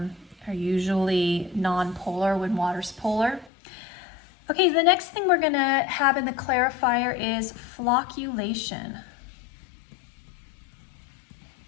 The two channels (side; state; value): right; drops out; at 3.5 s